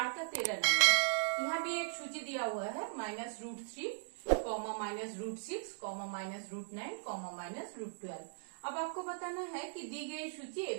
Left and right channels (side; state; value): left; silent; digital silence